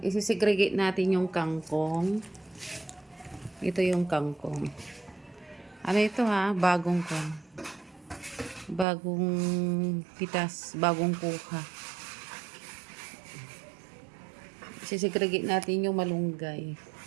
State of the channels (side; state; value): left; drops out; at 8.8 s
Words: isisegregate natin yung kangkong. Ito yung kangkong. Ano ito ha? Bagong pitas, bagong kuha. Isisegregate natin yung malunggay.